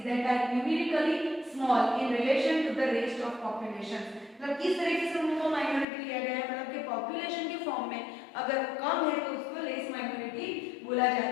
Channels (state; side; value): drops out; right; at 5.9 s